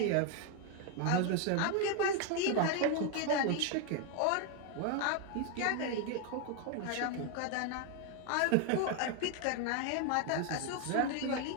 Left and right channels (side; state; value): both; different; correlation 0.01